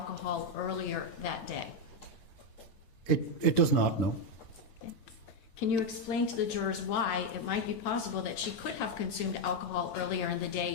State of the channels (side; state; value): right; late; 8.9 ms